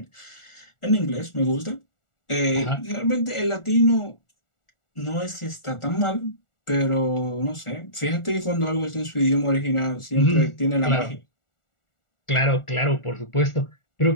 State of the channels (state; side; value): late; right; 1.4 ms